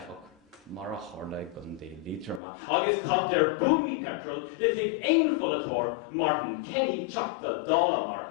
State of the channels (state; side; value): drops out; right; at 2.4 s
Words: mar a tharla gundé lítrama, agus cad der búmi petrol, le tig ein fullatór, Martin Kenny chapta dála mar